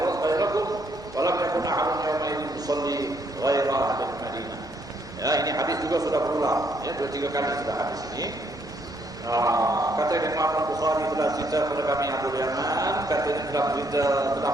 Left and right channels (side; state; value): both; normal; correlation 0.71